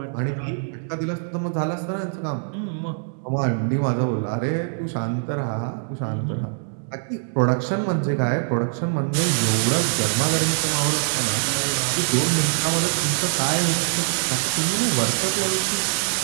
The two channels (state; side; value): silent; left; digital silence